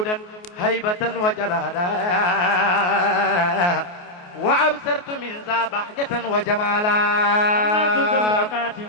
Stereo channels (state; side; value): late; right; 28 ms